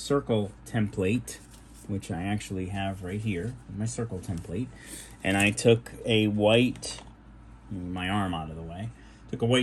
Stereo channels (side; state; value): both; identical; correlation 1.00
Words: template, which I actually have right here, my circle template, and I took a white, my arm out of the way, took a